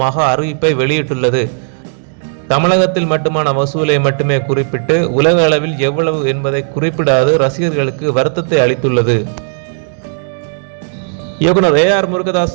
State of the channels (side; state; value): left; silent; digital silence